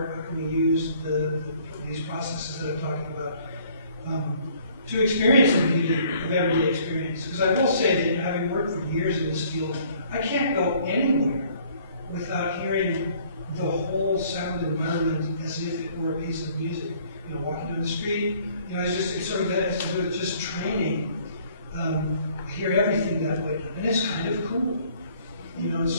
How can we use these processes that I'm talking about to experience the beauty of everyday experience? Because I will say that having worked for years in this field, I can't go anywhere without hearing the whole sound environment as if it were a piece of music. Walking down the street, it sort of has to do with just training. I hear everything that way, and it's kind of cool.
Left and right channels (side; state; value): both; inverted; correlation -0.59